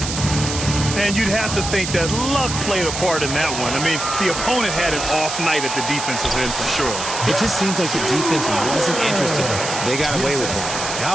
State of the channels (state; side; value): noise; right; hiss, 5 dB below the sound